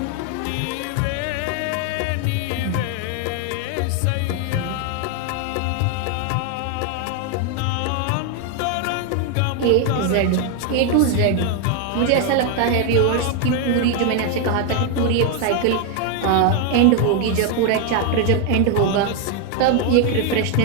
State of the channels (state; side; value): different; both; correlation 0.01